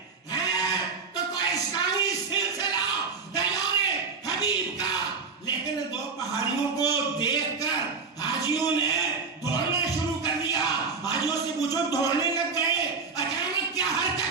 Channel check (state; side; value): quieter; left; 4.8 dB